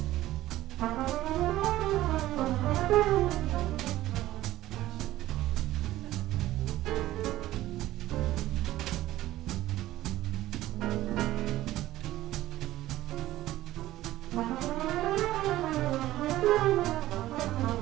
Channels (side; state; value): left; quieter; 15.3 dB